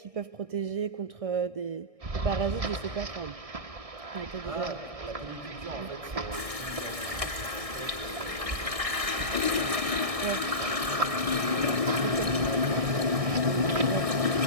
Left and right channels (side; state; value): left; late; 1.6 ms